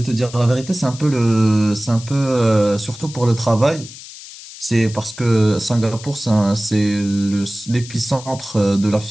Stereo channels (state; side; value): noise; left; hiss, 16 dB below the sound